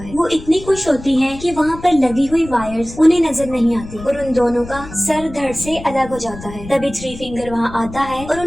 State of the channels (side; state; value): left; noise; rumble, 14 dB below the sound